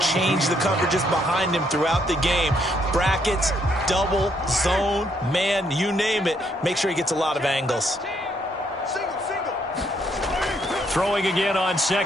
change the coverages behind him throughout the game. Brackets, double, zone, man, you name it. Make sure he gets a lot of angles. Throwing again on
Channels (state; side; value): normal; both; correlation 0.72